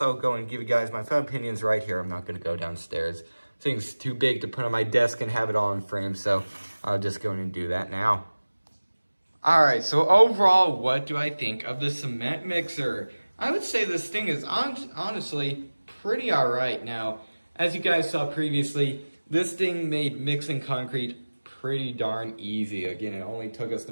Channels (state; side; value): inverted; both; correlation -1.00